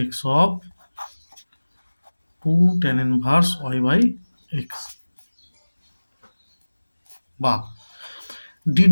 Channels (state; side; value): inverted; both; correlation -1.00